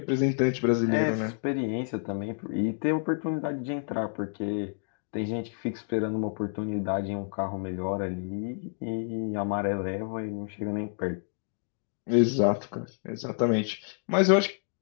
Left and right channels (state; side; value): silent; right; digital silence